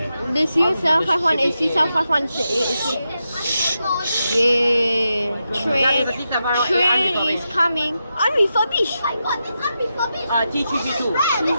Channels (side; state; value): both; inverted; correlation -0.87